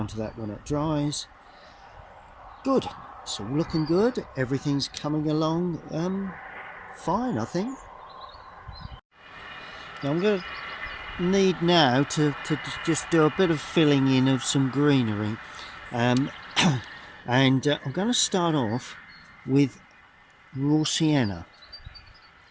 that when it dries. Good, it's all looking good, everything's coming along fine, I think. Now I'm going to need now to just do a bit of filling in of some greenery. And I'm going to start off with raw sienna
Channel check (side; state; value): both; identical; correlation 1.00